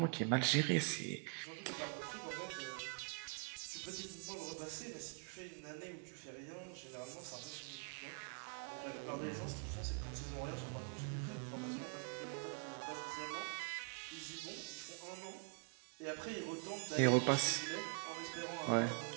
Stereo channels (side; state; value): left; quieter; 38.4 dB